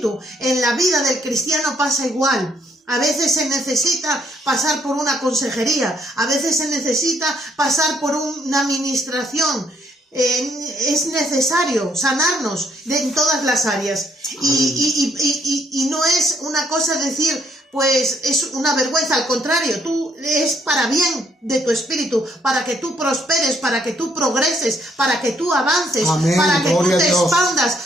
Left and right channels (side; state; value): both; normal; correlation 0.70